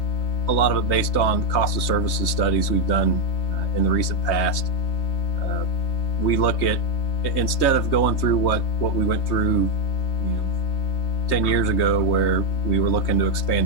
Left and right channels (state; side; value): late; right; 3.2 ms